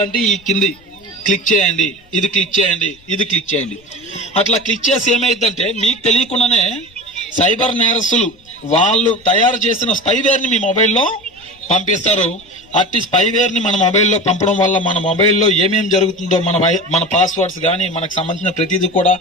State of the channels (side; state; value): left; noise; rumble, 29 dB below the sound